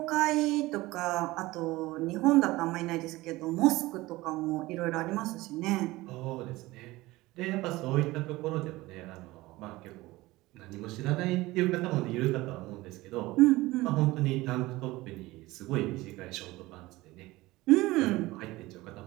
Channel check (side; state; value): left; quieter; 19.4 dB